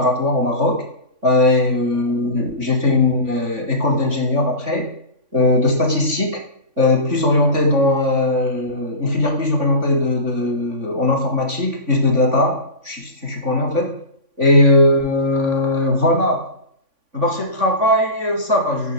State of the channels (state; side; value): late; left; 3.5 ms